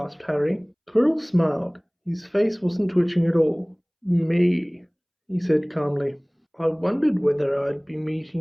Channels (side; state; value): both; identical; correlation 1.00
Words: Harry. Quirrell smiled. His face wasn't twitching at all. Me, he said calmly. I wondered whether I'd be